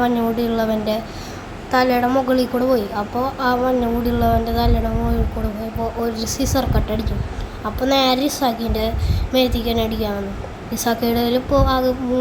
തലയുടെ മുകളിൽ കൂടെ പോയി. അപ്പോൾ ആ മഞ്ഞമുടിയുള്ളവൻ്റെ തലയുടെ മുകളിൽ കൂടെ പോയപ്പോൾ ഒരു സിസർ കട്ട് അടിച്ചു. അപ്പോൾ നേരെ ഇസാക്കിൻ്റെ മേത്തേക്ക് തന്നെ അടിക്കാൻ വന്നു. ഇസാക്കിയുടെ ഇപ്പോൾ ആകെ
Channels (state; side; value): identical; both; correlation 1.00